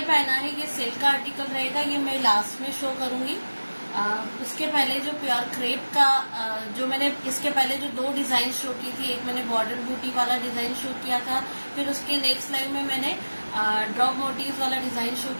पहना है ये सेल का आर्टिकल रहेगा, ये मैं लास्ट में शो करूंगी। उसके पहले जो प्योर क्रेप का जो मैंने इसके पहले जो दो डिजाइन शो की थी, एक मैंने बॉर्डर बूटी वाला डिजाइन शो किया था, फिर उसके नेक्स्ट लाइव में मैंने ड्रॉप मोटिव वाला डिजाइन शो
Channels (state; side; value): inverted; both; correlation -1.00